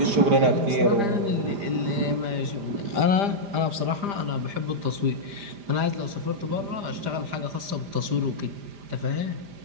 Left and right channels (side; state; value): left; late; 5.0 ms